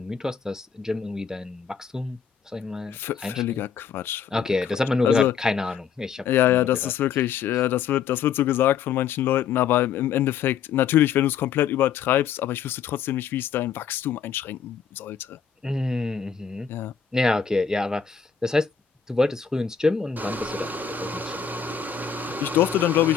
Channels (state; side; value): quieter; right; 7.3 dB